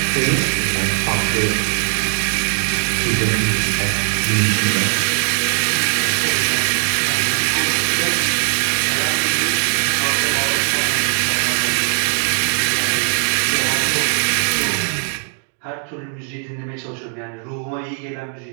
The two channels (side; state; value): left; silent; 59 dB below the other